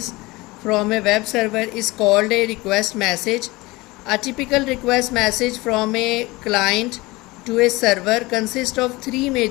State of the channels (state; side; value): quieter; right; 21.8 dB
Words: from a web server is called a request message. A typical request message from a client to a server consists of three